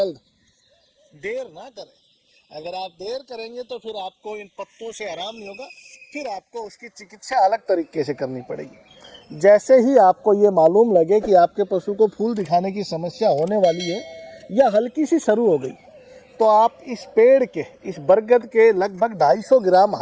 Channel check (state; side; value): identical; both; correlation 1.00